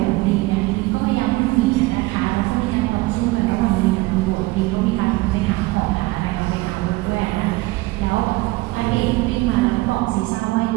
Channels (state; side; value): quieter; left; 21.0 dB